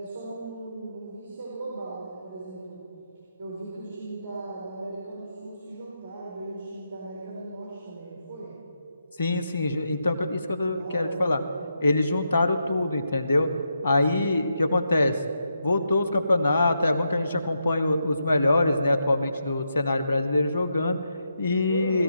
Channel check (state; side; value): inverted; both; correlation -0.83